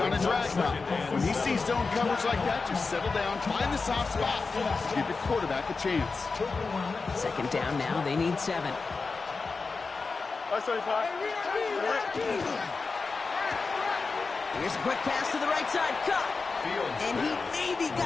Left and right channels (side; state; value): right; quieter; 4.3 dB